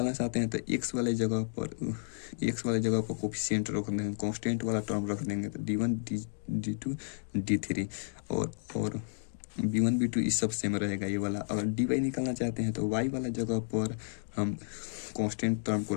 चाहते हैं तो x वाले जगह पर कोफिशिएंट रख देंगे, कांस्टेंट वाला टर्म रख देंगे, तो d1 d2 d3 और b1 b2 इस सब सेम रहेगा ये वाला। अगर dy निकालना चाहते हैं तो y वाला जगह पर हम कांस्टेंट टर्म को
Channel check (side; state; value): right; silent; digital silence